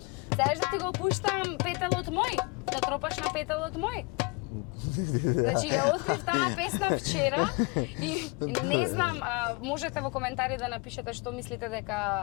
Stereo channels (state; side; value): quieter; right; 29.5 dB